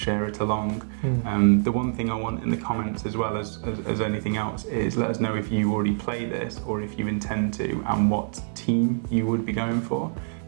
it along. The one thing I want in the comments as well as anything else is let us know if you already play this or if you intend to, and what team you would be going for,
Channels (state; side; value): silent; left; 61 dB below the other